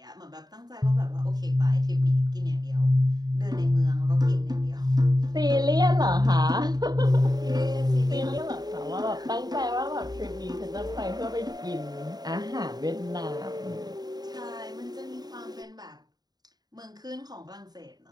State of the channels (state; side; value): late; left; 0.19 ms